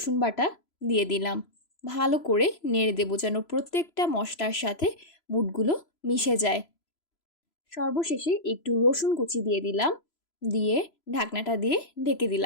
বাটা দিয়ে দিলাম। ভালো করে নেড়ে দেবো যেন প্রত্যেকটা মশলার সাথে বুটগুলো মিশে যায়। সর্বশেষে একটু রসুন কুচি দিয়ে দিলাম, দিয়ে ঢাকনাটা দিয়ে ঢেকে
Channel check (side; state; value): right; late; 3.0 ms